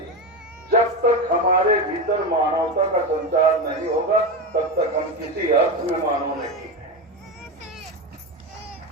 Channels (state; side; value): normal; both; correlation 0.16